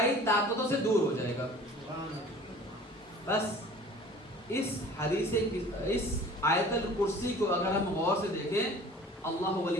طاقتوں سے دور ہو جائے گا. بس اس حدیث اس آیت الکرسی کو اگر ہم غور سے دیکھیں، اللہ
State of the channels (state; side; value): normal; both; correlation 0.46